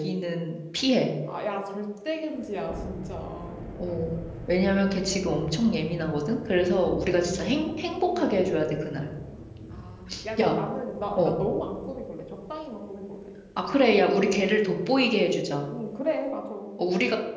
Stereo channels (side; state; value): both; identical; correlation 1.00